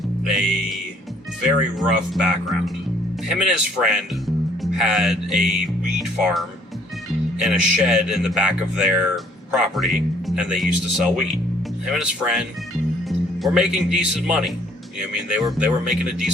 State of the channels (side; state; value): both; normal; correlation 0.62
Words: a very rough background. Him and his friend had a weed farm and a shed in the back of their property, and they used to sell weed. Him and his friend were making decent money. You know what I mean? They were making a